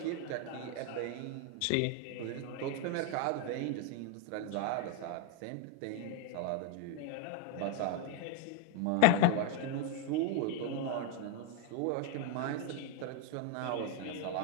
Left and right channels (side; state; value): both; different; correlation 0.01